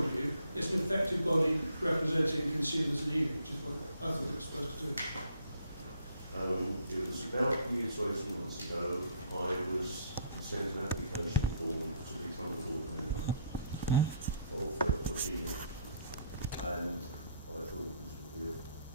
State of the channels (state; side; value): inverted; both; correlation -0.64